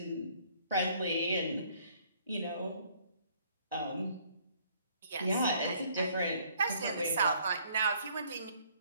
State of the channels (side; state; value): both; inverted; correlation -0.62